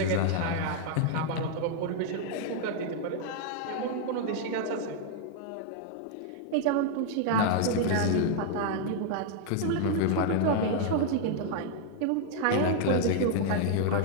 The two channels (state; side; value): different; both; correlation 0.00